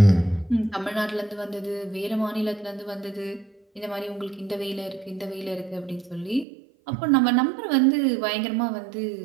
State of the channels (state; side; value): drops out; left; at 6.5 s